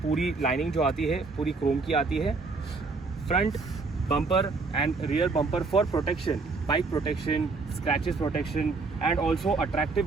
पूरी लाइनिंग जो आती है पूरी क्रोम की आती है। Front bumper and rear bumper for protection, bike protection, scratches protection and also attractive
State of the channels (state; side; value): quieter; left; 4.1 dB